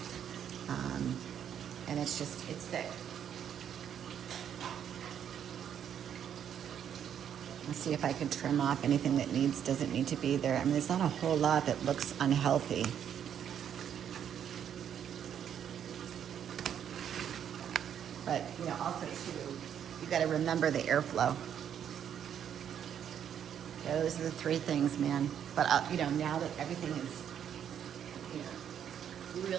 And it's thick. Let's see if I can trim off anything that doesn't need to be there. I mean, there's not a whole lot that looks unhealthy. But, you know, also too, you got to remember the airflow. Those are the three things, man. But, you know, now that everything is, you know,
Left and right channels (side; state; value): left; quieter; 9.0 dB